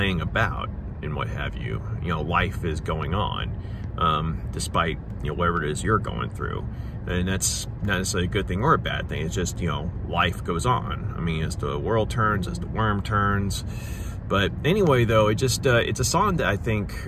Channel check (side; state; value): both; identical; correlation 1.00